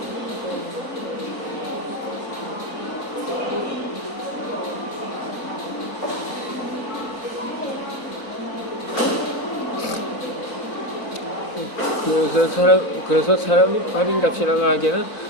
그래서 사람이 팔인 값이라고 하기에는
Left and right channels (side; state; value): both; normal; correlation 0.15